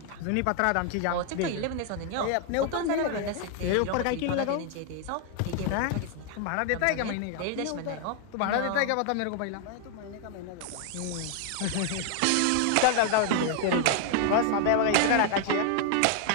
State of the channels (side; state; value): both; different; correlation 0.00